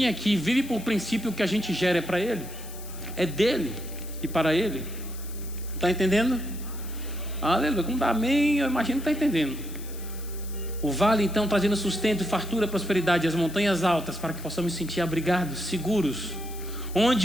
aqui, vive por princípio, que a gente gera é para Ele, é dele e para Ele. Está entendendo? Aleluia, como dá amém, eu imagino que está entendendo. O vale então trazendo sustento, fartura, prosperidade, as montanhas altas, para que possamos sentir abrigados, seguros.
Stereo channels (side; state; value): left; noise; hiss, 16 dB below the sound